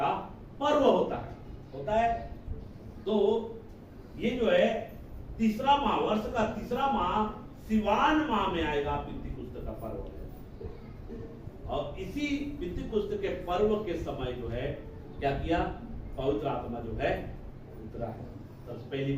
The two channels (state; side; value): identical; both; correlation 1.00